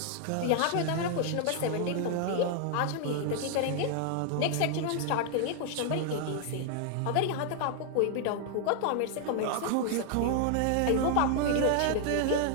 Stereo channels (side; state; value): both; different; correlation 0.00